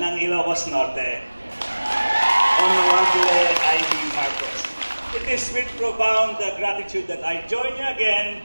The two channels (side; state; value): both; inverted; correlation -1.00